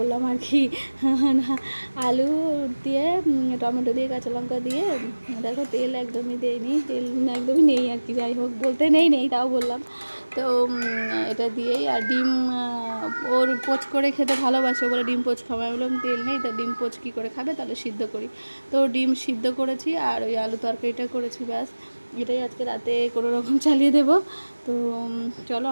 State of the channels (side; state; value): both; inverted; correlation -1.00